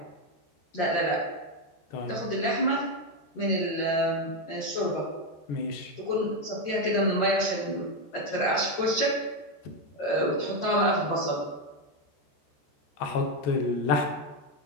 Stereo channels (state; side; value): late; right; 13 ms